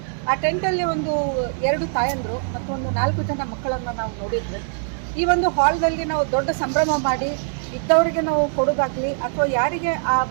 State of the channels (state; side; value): silent; left; digital silence